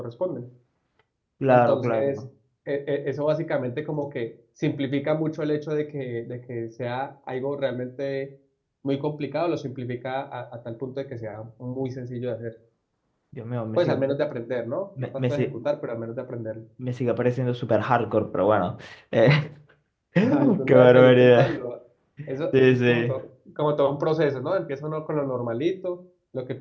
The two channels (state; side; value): identical; both; correlation 1.00